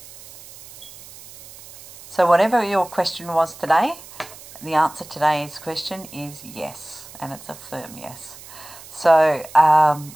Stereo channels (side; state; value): right; noise; hiss, 18 dB below the sound